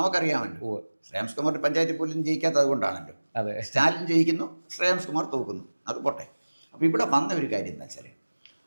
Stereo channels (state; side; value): inverted; both; correlation -1.00